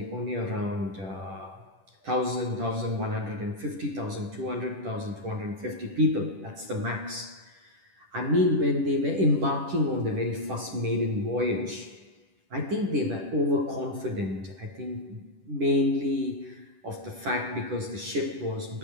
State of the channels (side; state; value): left; late; 10 ms